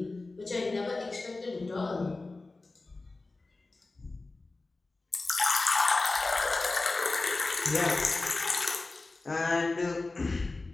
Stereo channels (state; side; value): quieter; right; 3.4 dB